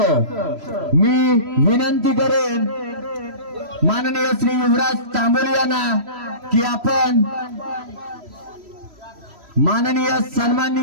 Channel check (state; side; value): late; left; 3.0 ms